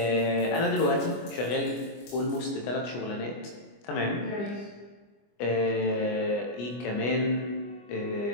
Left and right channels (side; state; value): right; late; 25 ms